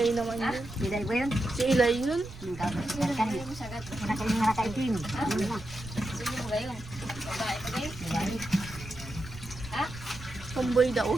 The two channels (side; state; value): right; noise; rumble, 14 dB below the sound